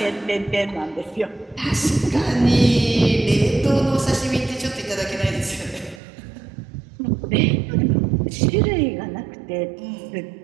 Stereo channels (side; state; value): left; drops out; at 6.0 s